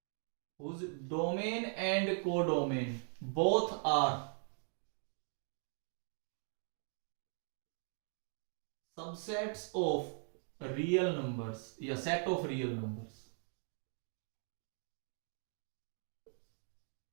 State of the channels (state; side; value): silent; left; 51 dB below the other